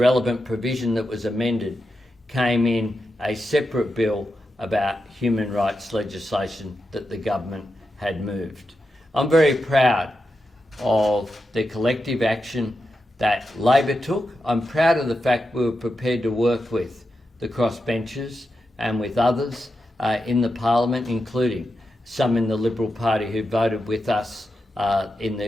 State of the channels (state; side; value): normal; both; correlation 0.88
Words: provision that was amended, came in a separate bill about human rights legislation that the government had moved. I'm very proud of the collective action that Labor took. I'm proud of the fact we were prepared to work with the crossbenchers and with others in the Parliament, including some in the Liberal Party who voted with us in